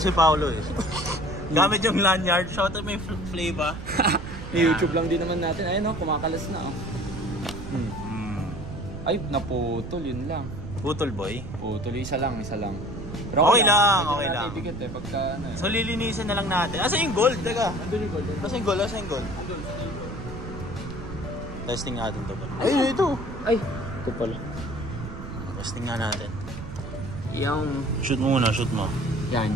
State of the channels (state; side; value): noise; right; rumble, 9 dB below the sound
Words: si Paolo eh. Gamit yung lanyard. Shout out may flavor. YouTube lang din naman natin. Ayun kumakalas na Ay, naputol, yun lang. Putol boy? Putol, isa lang. Pero okay lang. Ibigat eh, pagka ano eh. So lilinisin na lang natin. Asa yung gold? Teka. Andun yung gold. Asa yung gold? Testing natin to ba? Ay, ito. Ay, ito pala. Testing nga natin. Yung... Shoot mo muna, shoot mo. Yan.